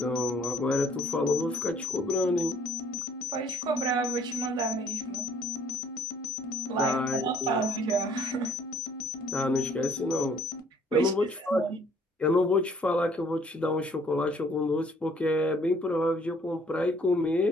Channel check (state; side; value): normal; both; correlation 0.59